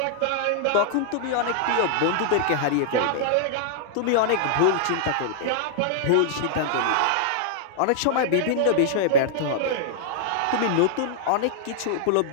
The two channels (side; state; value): both; different; correlation -0.01